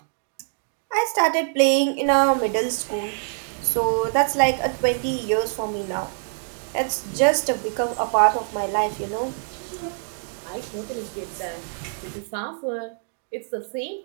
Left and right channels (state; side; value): silent; left; digital silence